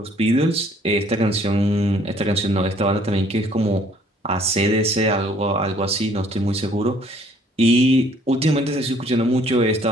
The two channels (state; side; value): normal; both; correlation 0.60